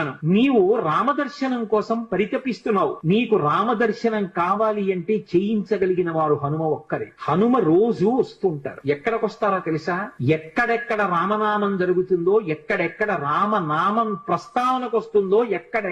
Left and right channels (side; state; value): both; identical; correlation 1.00